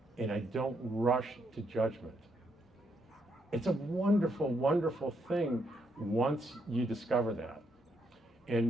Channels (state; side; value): normal; both; correlation 0.76